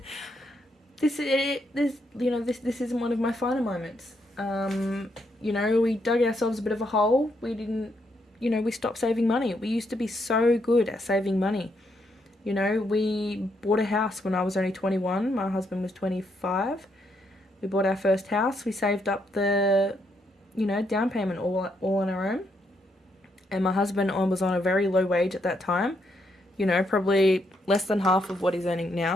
this isn't one of my finer moments. You know, we dug ourselves a bit of a hole. We didn't, we stopped saving money. We used to be so good at saving money. You know, we bought a house when I was only 21. My husband was 25. We bought our first house. We saved up the, down payment all on our own. And my husband was on a very low wage at that time. Probably less than half of what he's earning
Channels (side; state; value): both; normal; correlation 0.77